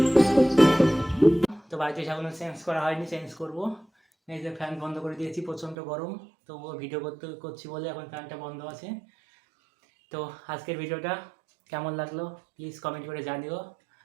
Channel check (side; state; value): left; drops out; at 5.8 s